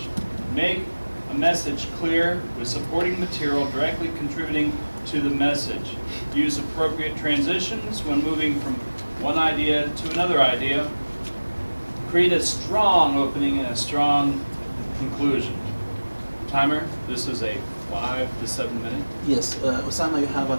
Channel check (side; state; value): both; inverted; correlation -1.00